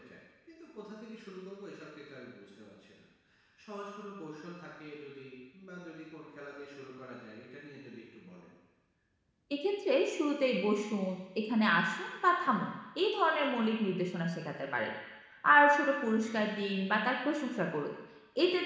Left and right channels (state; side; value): identical; both; correlation 1.00